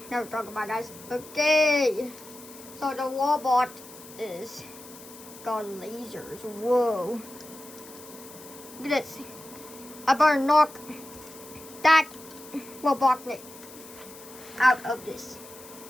now we're talking about, guys. Okay. So the robot is got lasers. Whoa. Look at this. I better knock that Robotnik out of this.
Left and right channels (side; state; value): left; noise; hiss, 18 dB below the sound